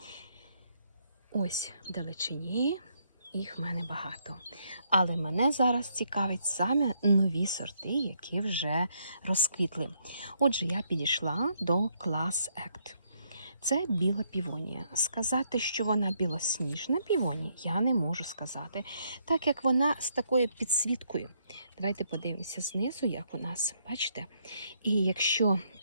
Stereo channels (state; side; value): inverted; both; correlation -0.73